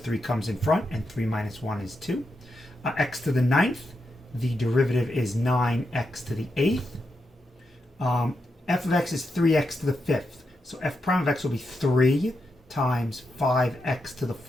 comes in front, and 3 minus 1 is 2. X to the ninth, the derivative is 9x to the eighth. F of x is 3x to the fifth. So f prime of x will be 3 times 5x to the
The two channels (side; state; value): both; normal; correlation 0.85